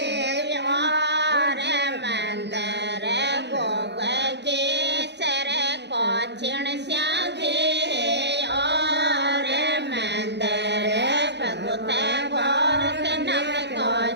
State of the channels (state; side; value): late; left; 0.50 ms